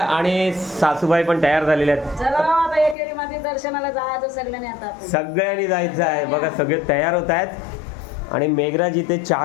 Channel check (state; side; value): drops out; right; at 3.0 s